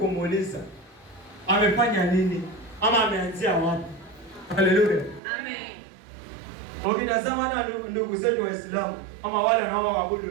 amefanya nini ama ameanzia wapi? Haleluya. Amen. Ukitazama hata ndugu zetu Waislamu ama wale wanaoabudu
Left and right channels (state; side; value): drops out; left; at 5.2 s